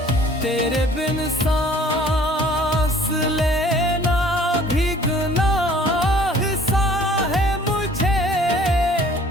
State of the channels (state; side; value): normal; both; correlation 0.53